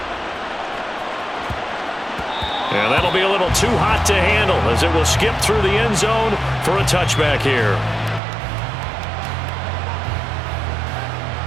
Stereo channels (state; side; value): drops out; left; at 8.2 s